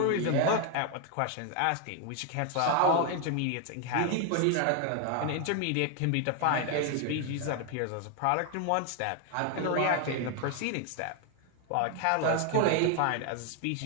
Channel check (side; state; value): both; different; correlation 0.01